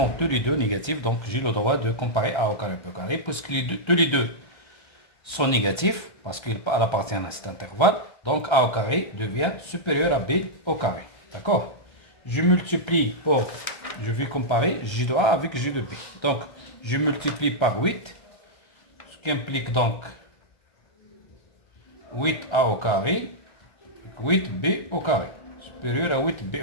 tous les deux négatifs. Donc, j'ai le droit de comparer A au carré, B au carré, puisque tous les deux sont négatifs, parce qu'ils appartiennent à cet intervalle. Donc, A au carré devient supérieur à B au carré. D'accord? Je multiplie je vais comparer G de A avec G de B. Donc, je multiplie par 8, ce qui implique donc 8A au carré, 8B au carré, supérieur à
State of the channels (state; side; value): late; right; 1.3 ms